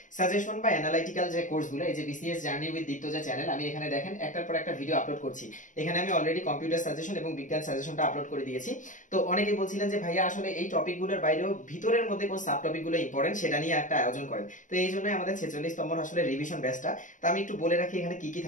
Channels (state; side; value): late; right; 0.37 ms